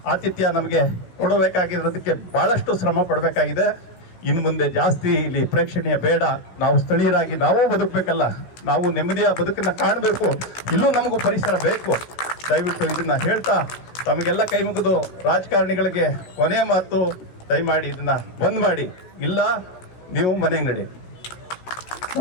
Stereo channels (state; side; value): late; right; 16 ms